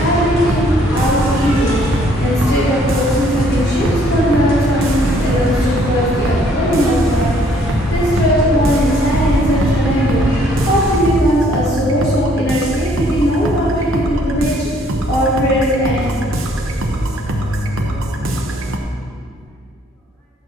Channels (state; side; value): normal; both; correlation 0.63